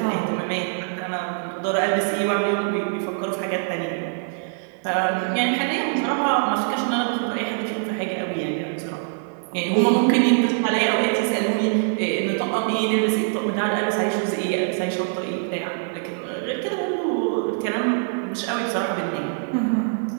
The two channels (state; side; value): silent; left; 57 dB below the other